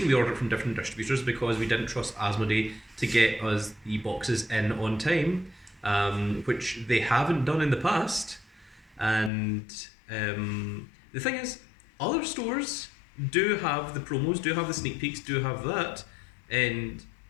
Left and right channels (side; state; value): right; drops out; at 9.3 s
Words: we ordered from different distributors is because we didn't trust Asmodee to get us the boxes in on time, which they haven't done in the past. And the thing is, other stores do have the promos, do have the sneak peeks, do have that, and